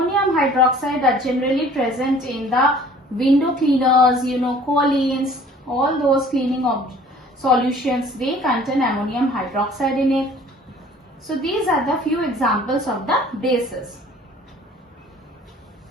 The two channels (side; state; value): both; normal; correlation 0.51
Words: hydroxide are generally present in the window cleaners, Collins, all those cleaning of solutions, they contain ammonium hydroxide in it. So these are the few examples of the bases.